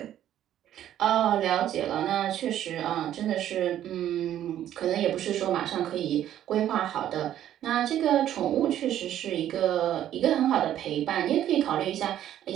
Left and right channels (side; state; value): left; quieter; 11.5 dB